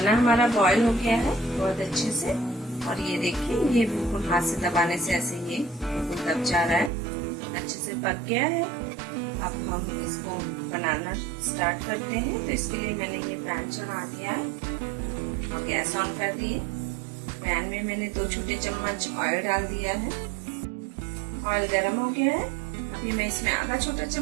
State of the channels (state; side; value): drops out; left; at 6.9 s